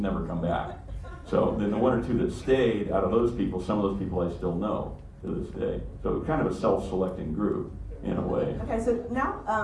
come back. So then the 1 or 2 that stayed, out of those people, some of those people I still know to this day. So kind of a self-selecting group in a way. Okay, so now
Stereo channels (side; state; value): both; identical; correlation 1.00